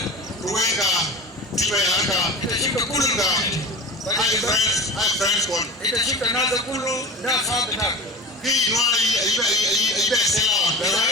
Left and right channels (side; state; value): both; normal; correlation 0.32